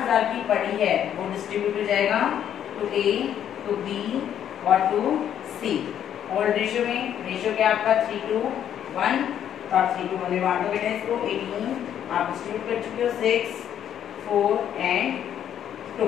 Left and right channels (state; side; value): quieter; right; 9.9 dB